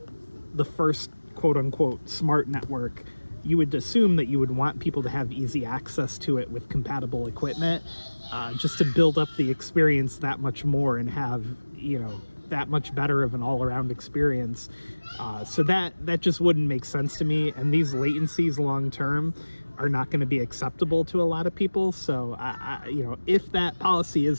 the first quote-unquote smart network, you would assume that you would want people to have easy access to it with compatible equipment, just to build up the experience that much more and have, you know, that much better of an all-around experience. So that just wouldn't make sense to me, and these latencies long-term are not going to be acceptable to a lot of people. So you know, if that policy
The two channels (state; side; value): inverted; both; correlation -1.00